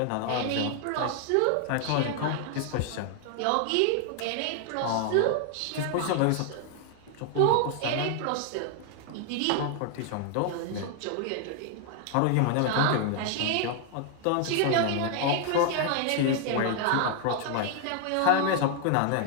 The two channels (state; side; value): different; both; correlation 0.00